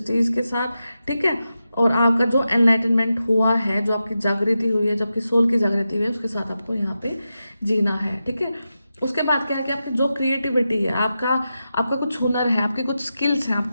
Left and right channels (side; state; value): both; inverted; correlation -0.90